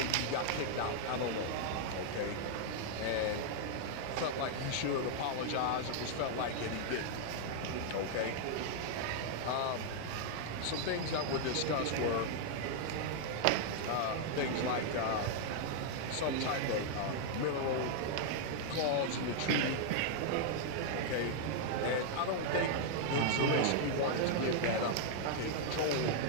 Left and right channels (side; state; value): both; different; correlation 0.00